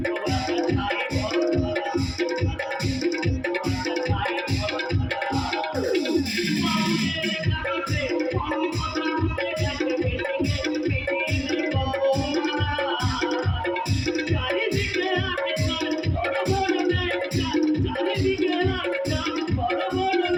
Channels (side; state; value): both; identical; correlation 1.00